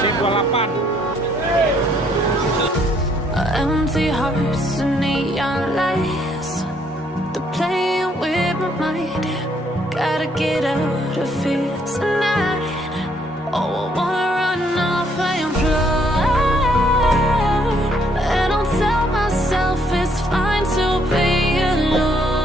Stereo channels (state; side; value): normal; both; correlation 0.68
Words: C28. Empty hearts and neon lights, they're playing with my mind. Gotta get out of here tonight. Oh, I wanna run off and fly, and I'll tell myself it's fine to be